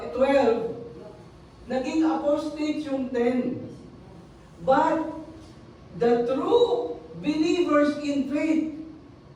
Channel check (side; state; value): both; identical; correlation 1.00